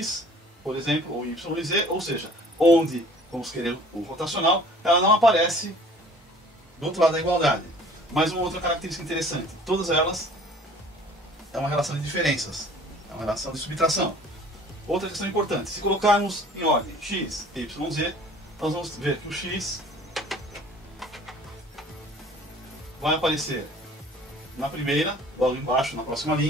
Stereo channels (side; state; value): both; normal; correlation 0.50